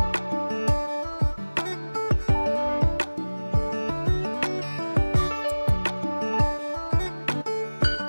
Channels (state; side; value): inverted; both; correlation -1.00